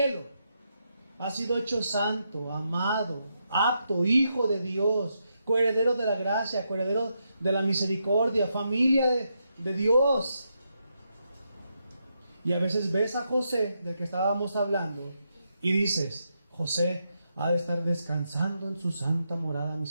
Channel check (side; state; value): both; inverted; correlation -0.82